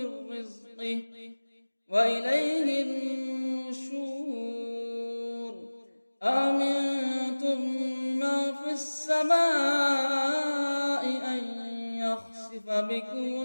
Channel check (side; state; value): both; inverted; correlation -1.00